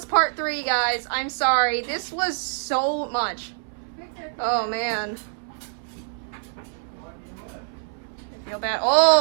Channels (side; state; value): left; silent; 62 dB below the other